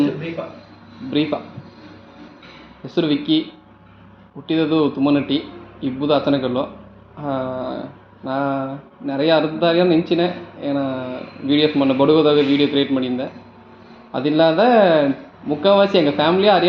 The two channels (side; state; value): both; identical; correlation 1.00